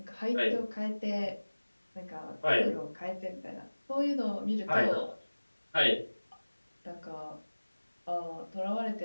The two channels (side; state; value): both; inverted; correlation -1.00